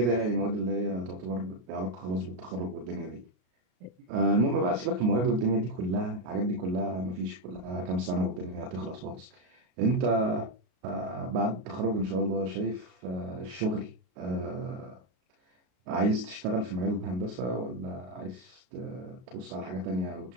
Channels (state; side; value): late; left; 33 ms